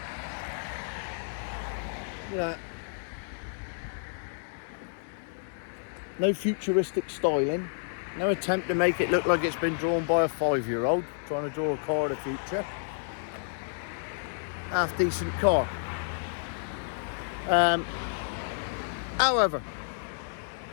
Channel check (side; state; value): right; silent; digital silence